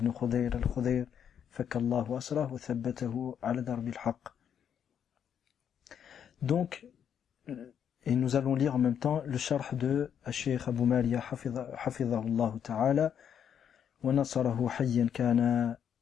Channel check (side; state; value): right; quieter; 8.5 dB